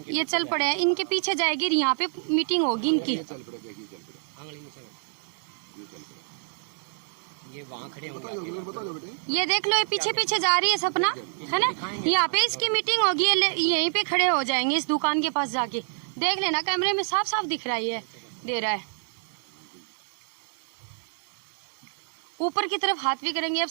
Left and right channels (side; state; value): left; silent; 59 dB below the other